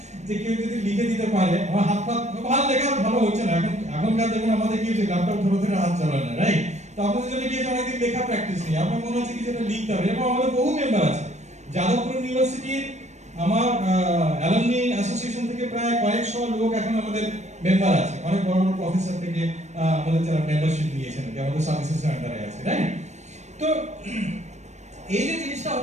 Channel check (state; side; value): late; left; 0.33 ms